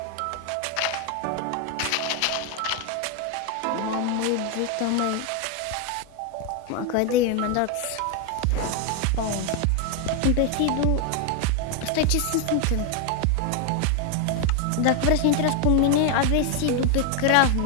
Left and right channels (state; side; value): different; both; correlation 0.01